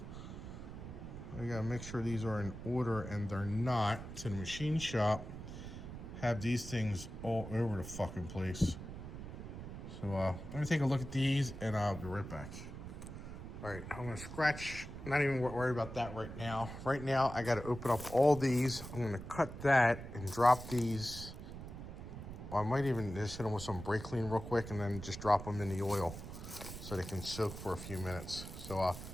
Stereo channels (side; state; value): right; noise; rumble, 10 dB below the sound